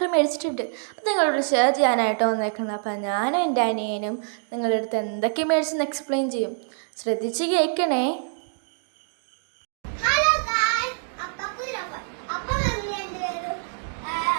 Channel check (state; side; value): silent; left; digital silence